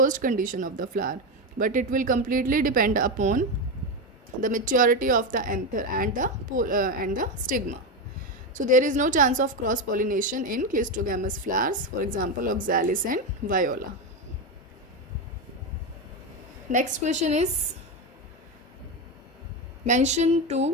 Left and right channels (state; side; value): normal; both; correlation 0.13